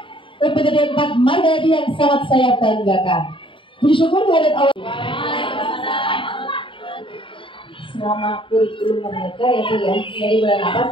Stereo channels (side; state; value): right; late; 0.25 ms